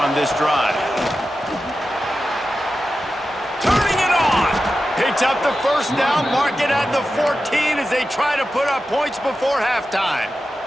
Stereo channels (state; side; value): normal; both; correlation 0.92